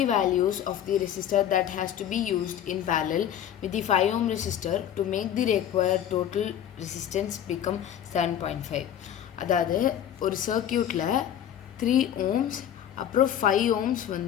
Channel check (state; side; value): quieter; right; 10.2 dB